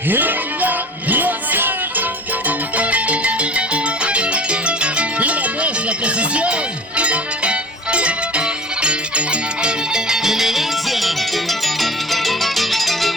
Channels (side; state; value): both; normal; correlation 0.40